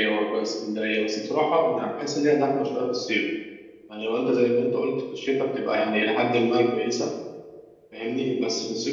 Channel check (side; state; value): both; identical; correlation 1.00